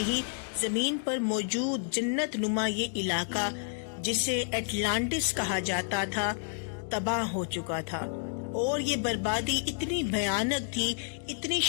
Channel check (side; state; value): right; silent; digital silence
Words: ہی زمین پر موجود جنت نما یہ علاقہ، جسے اٹلانٹس کہا جاتا تھا، تباہ ہو چکا تھا، اور یہ بربادی اتنی بھیانک تھی، اتنی